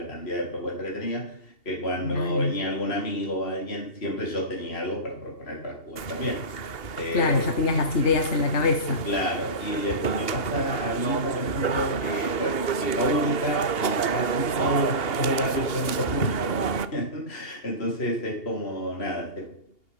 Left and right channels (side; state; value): right; late; 2.8 ms